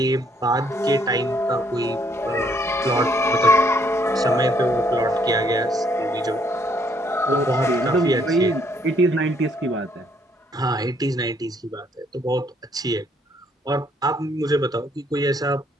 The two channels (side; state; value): both; normal; correlation 0.67